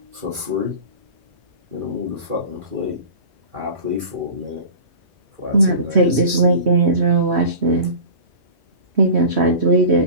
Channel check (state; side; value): late; left; 2.4 ms